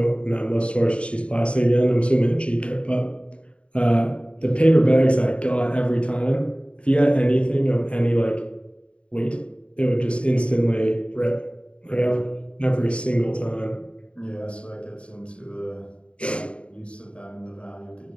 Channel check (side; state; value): right; late; 0.058 ms